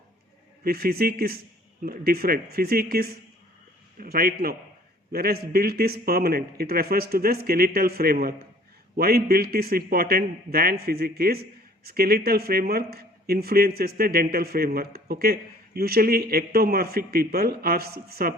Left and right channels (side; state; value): both; normal; correlation 0.54